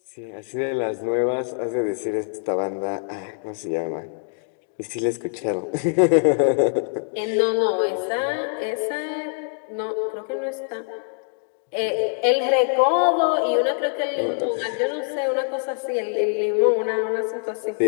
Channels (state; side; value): silent; right; digital silence